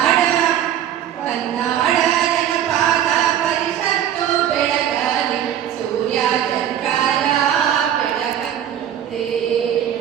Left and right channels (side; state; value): left; quieter; 10.4 dB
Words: ಕನ್ನಡ ಜನಪದ ಪರಿಷತ್ತು ಬೆಳಗಲಿ ಸೂರ್ಯ ಚಂದ್ರರ ಬೆಳಕಂತೆ